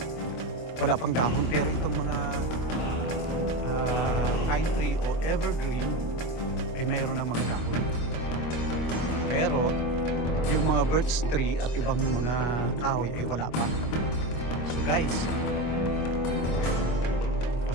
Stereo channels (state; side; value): late; right; 25 ms